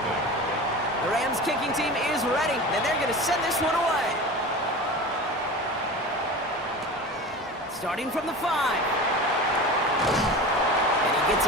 The Rams kicking team is ready, and they're going to send this one away. Starting from the 5. And he gets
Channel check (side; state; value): both; normal; correlation 0.32